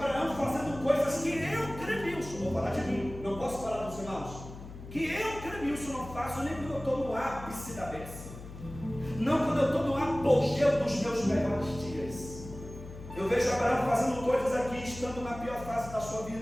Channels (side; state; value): left; noise; hum, 13 dB below the sound